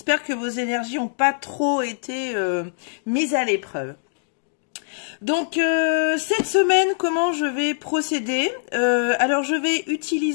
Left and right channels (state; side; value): silent; right; digital silence